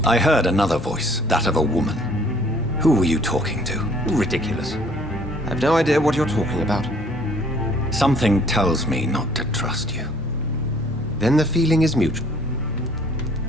I heard another voice, that of a woman. Who were you talking to? Ridiculous. I've no idea what you're talking about. Something tells me not to trust you. Then the feeling is mutual.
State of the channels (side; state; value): both; normal; correlation 0.57